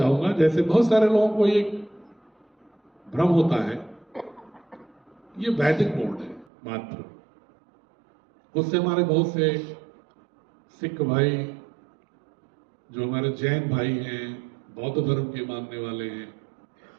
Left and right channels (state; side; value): drops out; left; at 6.5 s